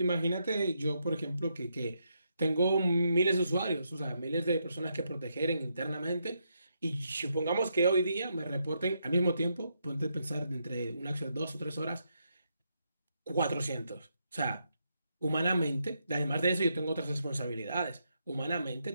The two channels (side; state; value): both; inverted; correlation -0.79